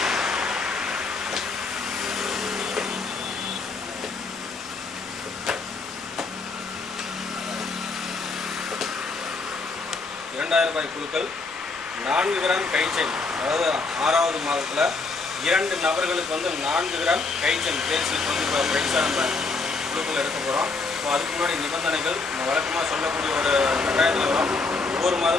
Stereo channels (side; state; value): right; quieter; 4.0 dB